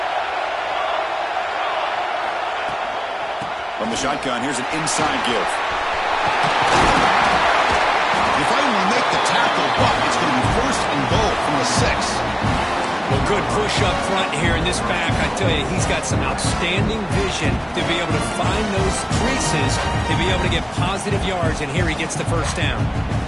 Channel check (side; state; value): both; identical; correlation 1.00